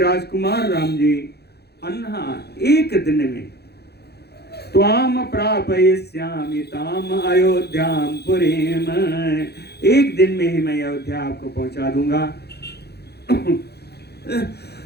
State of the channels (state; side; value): late; right; 0.48 ms